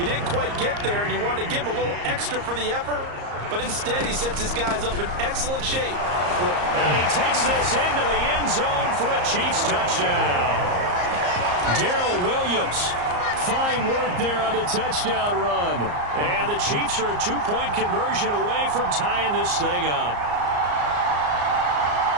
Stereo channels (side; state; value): left; late; 34 ms